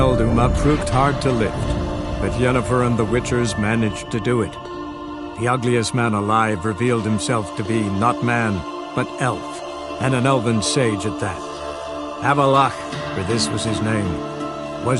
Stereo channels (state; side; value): identical; both; correlation 1.00